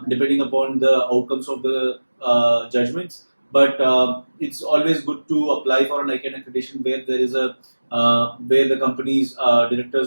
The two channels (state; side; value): inverted; both; correlation -1.00